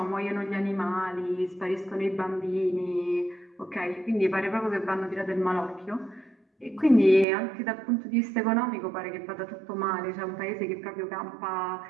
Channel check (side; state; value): left; drops out; at 7.2 s